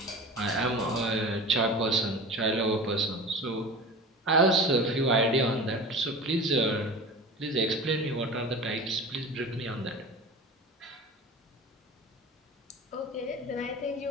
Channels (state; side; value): normal; both; correlation 0.34